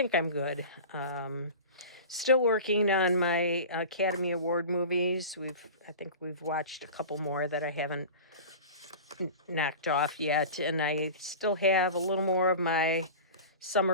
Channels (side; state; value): both; inverted; correlation -0.34